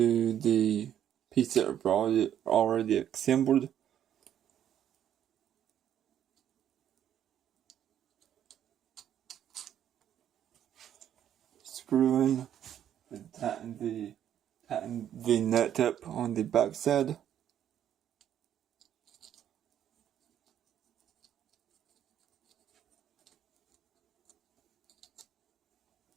the piece that I've already assembled. Screw in and tighten the nut up on the back side.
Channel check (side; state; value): left; quieter; 10.2 dB